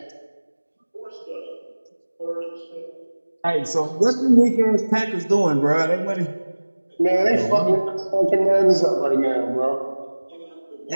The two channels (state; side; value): inverted; both; correlation -1.00